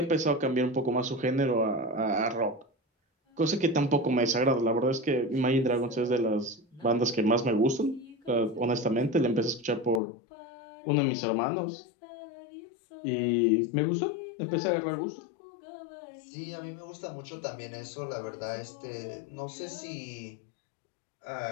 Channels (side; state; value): right; drops out; at 10.0 s